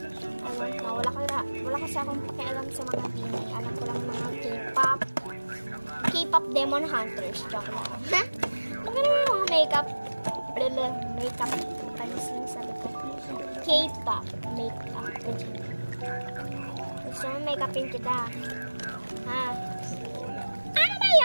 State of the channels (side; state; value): both; inverted; correlation -1.00